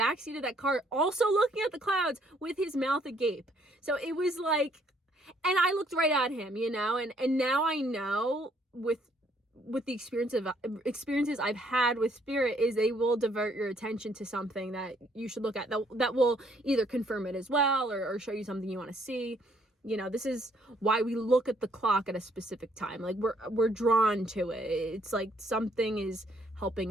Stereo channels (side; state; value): both; normal; correlation 0.66